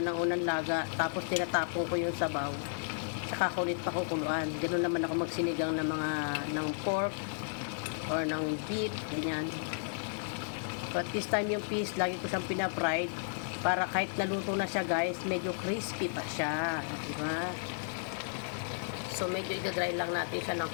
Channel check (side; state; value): right; silent; digital silence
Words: ng unang laga, tapos tinatapon ko yung sabaw. Saka kulit pa kukuluan. Ganun naman ako magsinigang ng pork or ng beef, ganyan. But this time yung fish, lagi ko siyang pinapried. Para kahit naluto na siya guys, medyo crispy pa siya. Diba? So medyo idadry lang natin siya ng